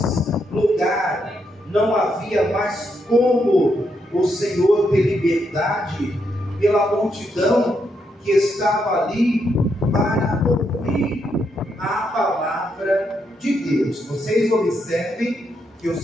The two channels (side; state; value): both; normal; correlation 0.79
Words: lugar, não havia mais como o Senhor ter liberdade pela multidão que estava ali para ouvir a palavra de Deus. Vocês observem que o